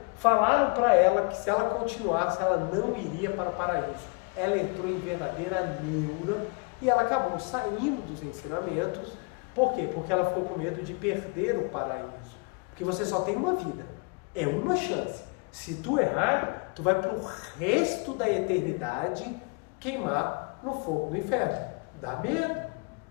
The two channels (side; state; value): right; quieter; 32.8 dB